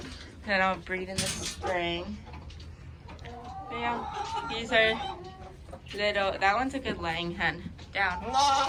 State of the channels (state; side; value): identical; both; correlation 1.00